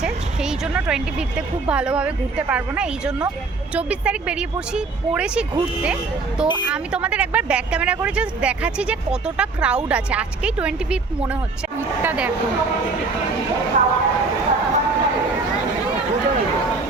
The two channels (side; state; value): left; quieter; 4.0 dB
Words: সেই জন্য 25-তে খুব ভালোভাবে ঘুরতে পারবো না। এই জন্য 24 তারিখ বেরিয়ে পড়েছি ঘুরতে। তো আমি তোমাদের একবার ব্যাক ক্যামেরা করে জাস্ট দেখাচ্ছি যে কতটা ক্রাউড আছে। আজকেই 25 মনে হচ্ছে। ভিড়টা দেখো,